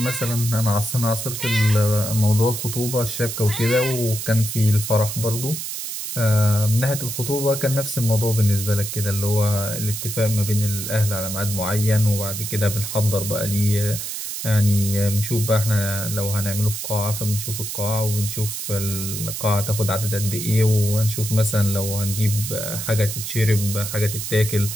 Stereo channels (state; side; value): noise; right; hiss, 5 dB below the sound